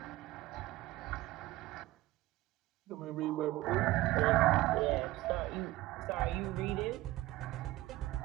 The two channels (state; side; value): quieter; left; 17.5 dB